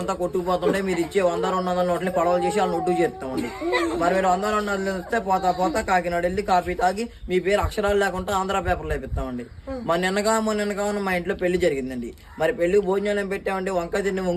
అంతా కొట్టుకుపోతుంటే మీరు ఇచ్చే 100-200 నోట్లని పడవలు చేసి వాళ్ళని ఒడ్డు చేస్తామండి. మరి మీరు 100-200 ఇస్తే పోతా కాకినాడ వెళ్ళి కాఫీ తాగి మీ పేరు అక్షరాలు లేకుండా ఆంధ్ర పేపర్లో వేపిస్తామండి. మొన్న నిన్నగా మా ఇంట్లో పెళ్లి జరిగిందండి. మరి పెళ్లి భోజనాలు పెట్టామండి. వంకాయ తిండి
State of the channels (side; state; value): both; identical; correlation 1.00